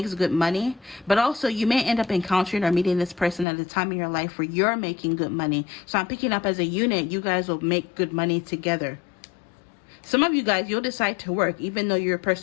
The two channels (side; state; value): right; drops out; at 3.5 s